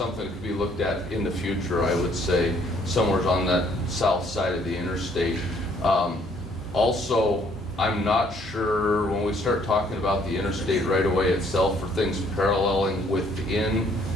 that could be looked at in the future, I would say, somewhere on that south side of the interstate. Also, I'm not sure when we start talking about the interstate right away itself for things paralleling within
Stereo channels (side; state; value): both; normal; correlation 0.64